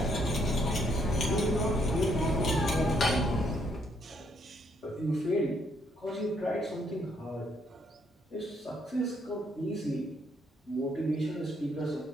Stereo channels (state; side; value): normal; both; correlation 0.71